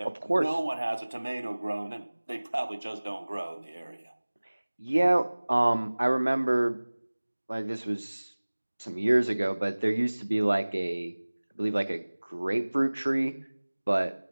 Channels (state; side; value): inverted; both; correlation -1.00